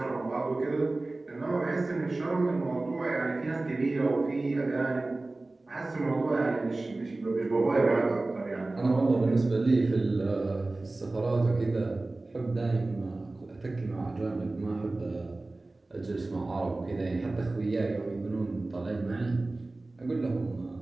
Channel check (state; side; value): quieter; left; 3.1 dB